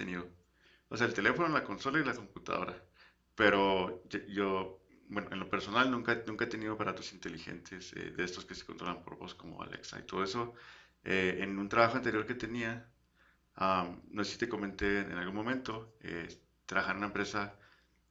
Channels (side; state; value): both; identical; correlation 1.00